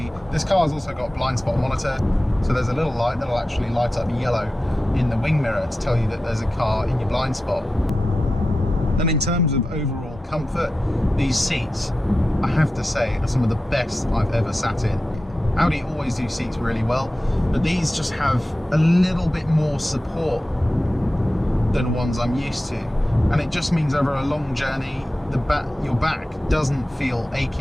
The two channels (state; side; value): normal; both; correlation 0.93